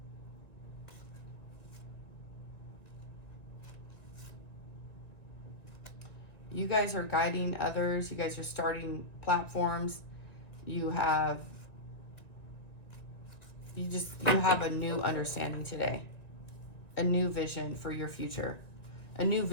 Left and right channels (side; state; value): right; late; 1.9 ms